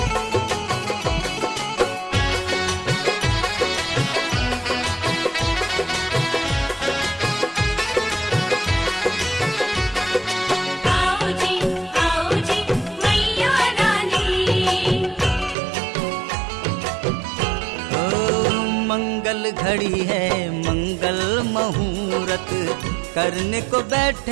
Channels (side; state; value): left; drops out; at 15.6 s